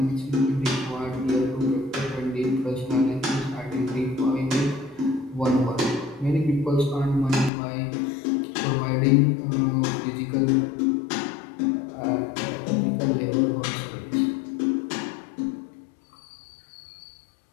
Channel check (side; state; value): right; drops out; at 7.5 s